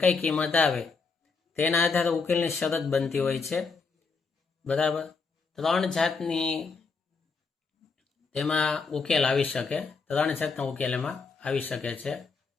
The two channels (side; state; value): right; quieter; 4.7 dB